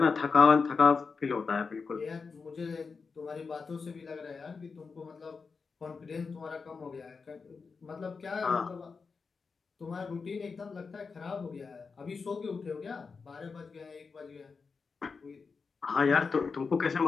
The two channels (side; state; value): right; quieter; 4.9 dB